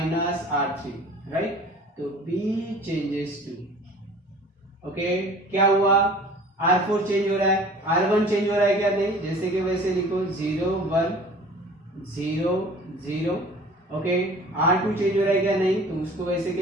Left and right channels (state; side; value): normal; both; correlation 0.46